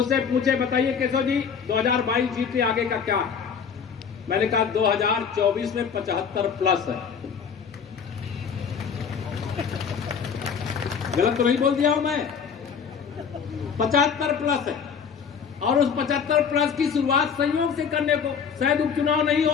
पूछे बताइए केशव जी 2022 जीते, आगे का क्या? मैंने कहा 2024 में 75 प्लस है। गलत तो नहीं बोल दिया हूं मैं? 75 प्लस है। और उस 75 प्लस की शुरुआत संयोग से करने को, शायद उपचुनाव नहीं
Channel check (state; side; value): quieter; right; 6.7 dB